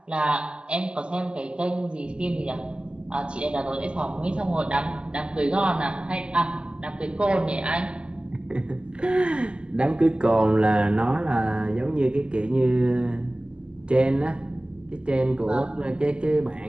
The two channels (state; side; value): late; left; 0.050 ms